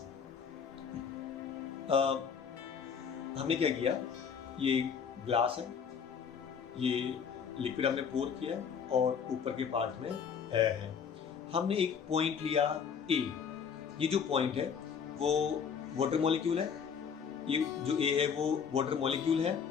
हमने क्या किया, ये ग्लास है, ये लिक्विड हमने पोर किया और ऊपर के पार्ट में एयर है। हमने एक पॉइंट लिया ए, ये जो पॉइंट है वो वाटर मॉलिक्यूल है, ये जो ए है वो वाटर मॉलिक्यूल है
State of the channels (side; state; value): right; quieter; 6.9 dB